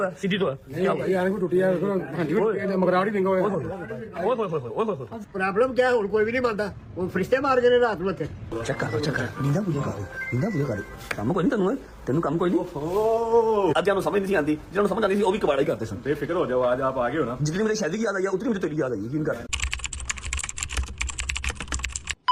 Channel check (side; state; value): both; identical; correlation 1.00